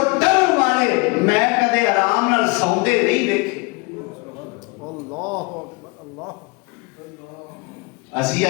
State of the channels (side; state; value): right; quieter; 28.2 dB